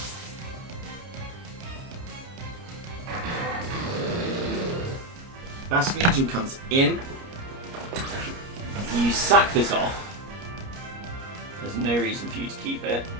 Basculegion comes in. You sack this off. There's no reason for you to keep it.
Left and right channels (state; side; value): late; left; 30 ms